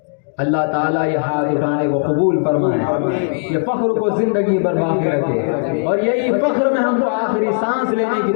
اللہ تعالیٰ یہ ہاتھ اٹھانے کو قبول فرمائے، یہ فخر کو زندگی بھر باقی رکھے، اور یہی فخر میں ہم کو آخری سانس لینے کی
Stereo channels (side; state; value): right; silent; digital silence